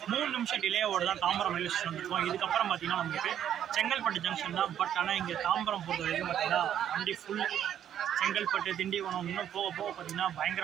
3 நிமிஷம் டிலேவோடு தான் தாம்பரம் ரயில்வே ஸ்டேஷன் வந்துருக்கோம். இதுக்கப்புறம் பார்த்தீங்கன்னா நமக்கு செங்கல்பட்டு ஜங்ஷன் தான். பட் ஆனால் இங்கே தாம்பரம் பொறுத்த வரைக்கும் பார்த்தீங்கன்னா வண்டி ஃபுல் செங்கல்பட்டு திண்டிவனம் இன்னும் போக போக பார்த்தீங்கன்னா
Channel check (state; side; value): quieter; left; 10.1 dB